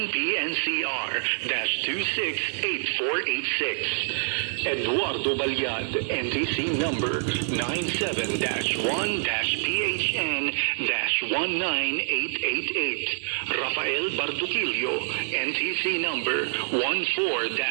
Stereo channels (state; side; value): silent; left; digital silence